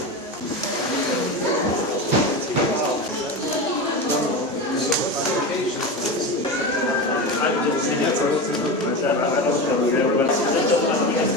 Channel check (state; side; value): normal; both; correlation 0.23